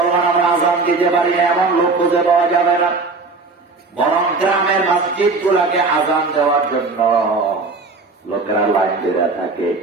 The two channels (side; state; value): left; quieter; 3.9 dB